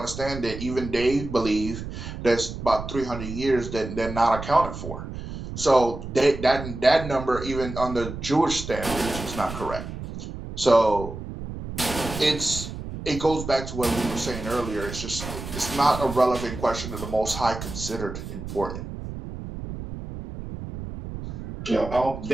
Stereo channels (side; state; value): right; noise; rumble, 9 dB below the sound